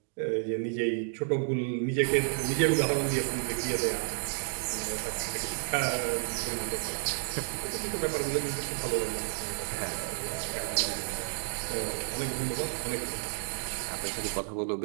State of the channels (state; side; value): silent; left; digital silence